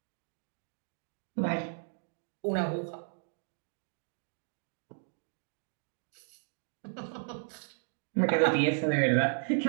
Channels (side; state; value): left; silent; digital silence